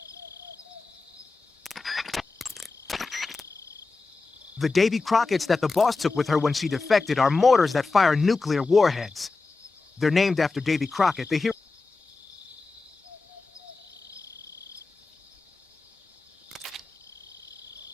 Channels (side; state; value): right; quieter; 3.9 dB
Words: The Davy Crockett's that the boss took with her when she defected are mortars that fire nuclear warheads. They're named after Davy Crockett, the hero.